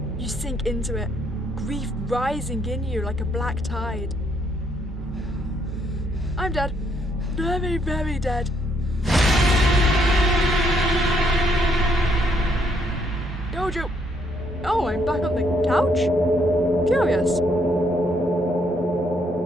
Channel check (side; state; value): both; normal; correlation 0.71